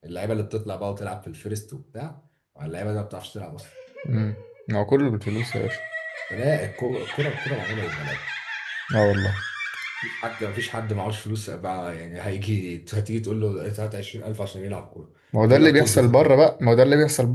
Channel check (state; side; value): identical; both; correlation 1.00